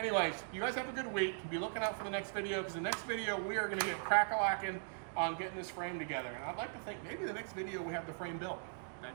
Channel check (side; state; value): left; silent; digital silence